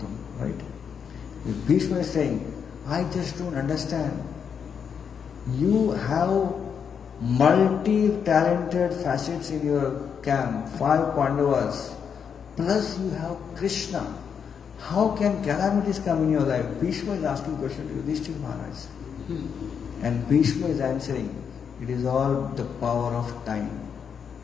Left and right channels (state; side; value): quieter; right; 7.1 dB